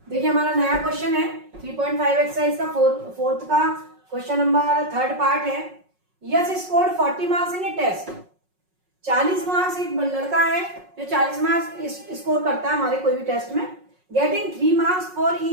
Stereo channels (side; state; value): left; late; 5.4 ms